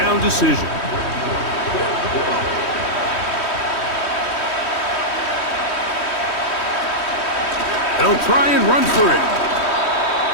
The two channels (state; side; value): late; right; 3.1 ms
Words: decision. They'll try and run for it.